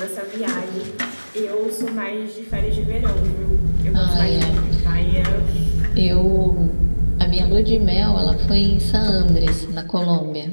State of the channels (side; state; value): both; inverted; correlation -1.00